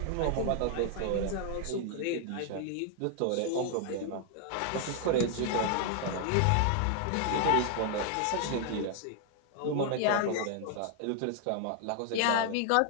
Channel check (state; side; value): different; both; correlation 0.00